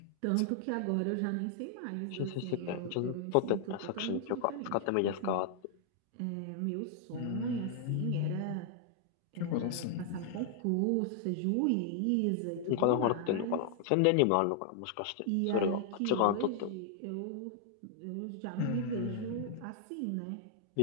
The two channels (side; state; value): both; different; correlation 0.00